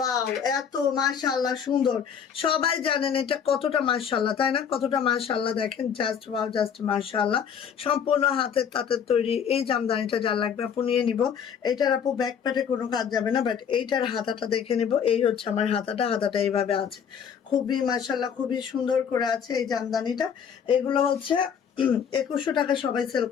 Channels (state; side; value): quieter; right; 7.6 dB